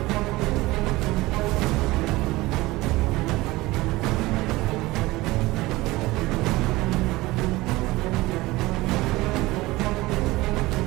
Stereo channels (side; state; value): left; quieter; 19.8 dB